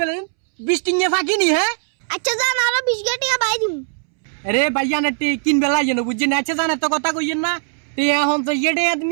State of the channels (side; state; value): left; silent; 66 dB below the other